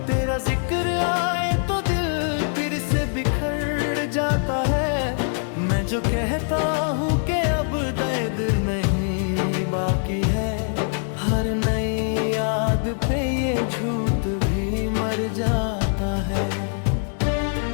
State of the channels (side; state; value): right; silent; 63 dB below the other